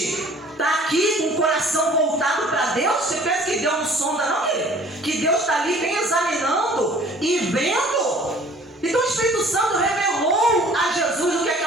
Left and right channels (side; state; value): both; normal; correlation 0.52